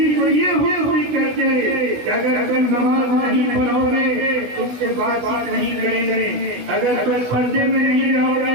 کو یہ ہوئی کہتے کہ اگر تم نماز نہیں پڑھو گے تم سے بات چیت نہیں کریں گے، اگر تم پردے میں نہیں رہو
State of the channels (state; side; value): late; left; 16 ms